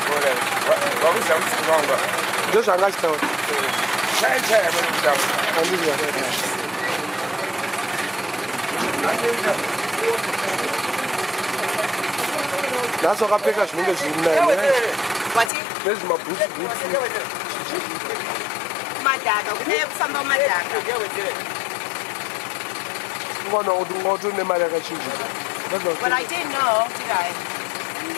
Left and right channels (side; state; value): right; drops out; at 15.5 s